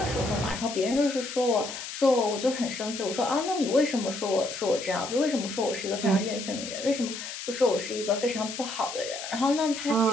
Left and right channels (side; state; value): left; noise; hiss, 8 dB below the sound